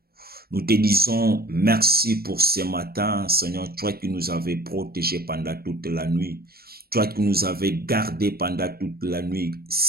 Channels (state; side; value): late; left; 0.44 ms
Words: nous te disons merci pour ce matin, Seigneur, toi qui nous avais protégés pendant toute la nuit, toi qui nous avais gardés pendant toute la nuit,